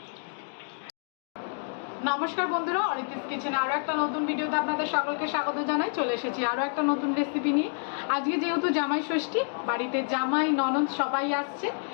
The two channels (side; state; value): right; silent; digital silence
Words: নমস্কার বন্ধুরা, অরিত্রিস কিচেনে আরও একটা নতুন ভিডিওতে আপনাদের সকলকে স্বাগত জানাই। চলে এসেছি আরও একটা নতুন রেসিপি নিয়ে। আজকে যেহেতু জামাই ষষ্ঠী, বাড়িতে জামাই ননদ সবাই আসছে,